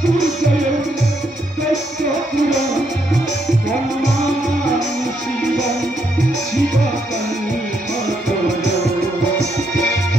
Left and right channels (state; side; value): normal; both; correlation 0.76